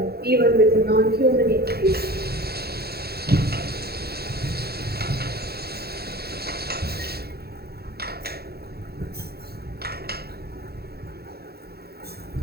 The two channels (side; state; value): left; late; 0.46 ms